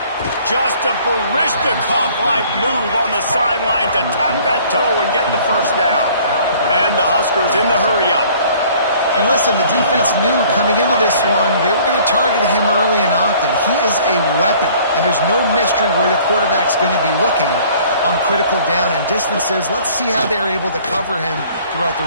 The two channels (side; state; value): both; inverted; correlation -0.54